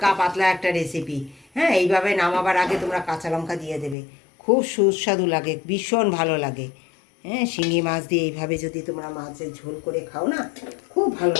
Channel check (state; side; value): drops out; right; at 4.0 s